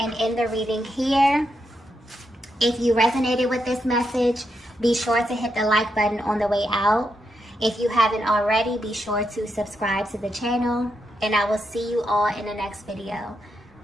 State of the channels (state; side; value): normal; both; correlation 0.82